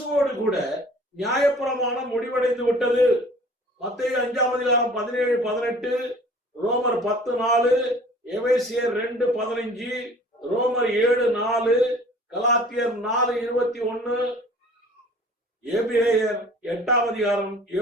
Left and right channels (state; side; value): normal; both; correlation 0.49